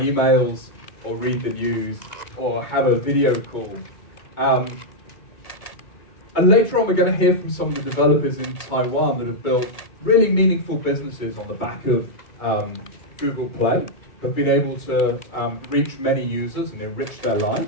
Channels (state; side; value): late; right; 2.3 ms